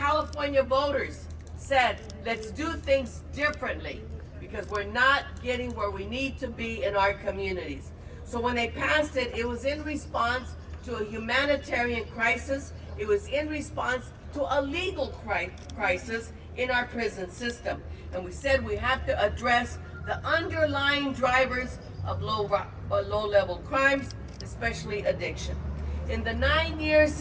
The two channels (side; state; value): both; identical; correlation 1.00